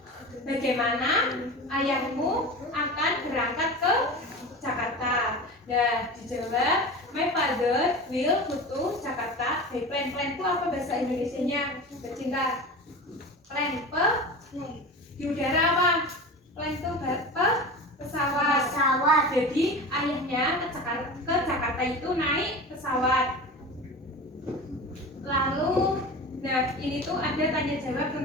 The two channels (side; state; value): both; normal; correlation 0.31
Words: Bagaimana ayahmu akan berangkat ke Jakarta? Nah, dijawab my father will go to Jakarta by plane. Plane itu apa bahasa Indonesianya? Bercinta. Plane di udara apa? Plane itu pesawat. Jadi ayahnya ke Jakarta itu naik pesawat. Lalu, nah ini tuh ada tanya jawab